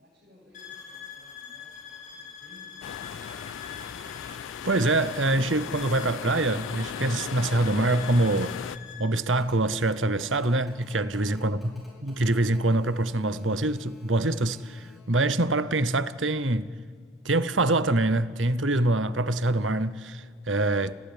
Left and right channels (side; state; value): both; normal; correlation 0.47